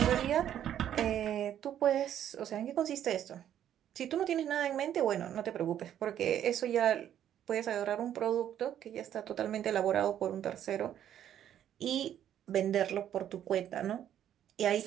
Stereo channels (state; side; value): quieter; left; 10.6 dB